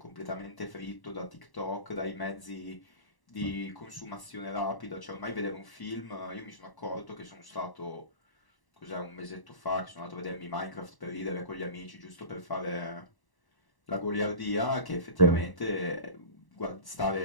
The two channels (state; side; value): late; right; 1.0 ms